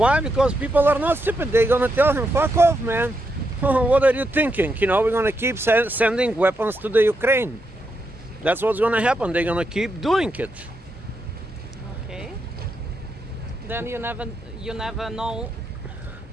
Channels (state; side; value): normal; both; correlation 0.82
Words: Because people are not stupid. They're gonna tell him, "Fuck off, man. What are you thinking? We're gonna keep sending weapons to the Ukraine." That's what's gonna happen. They're gonna keep doing it. Okay. Then you never know.